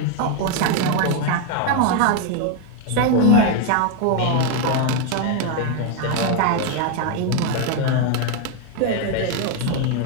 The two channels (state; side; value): different; both; correlation 0.01